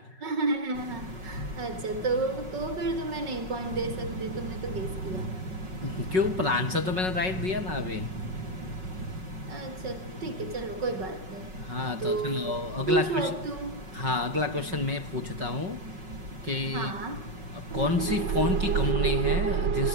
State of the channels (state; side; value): late; left; 5.4 ms